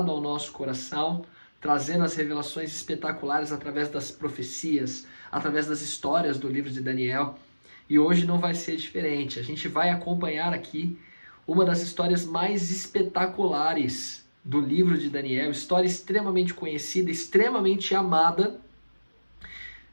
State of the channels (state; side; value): inverted; both; correlation -1.00